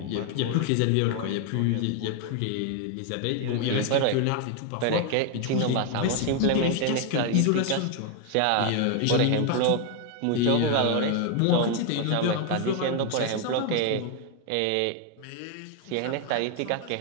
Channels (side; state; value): both; different; correlation 0.01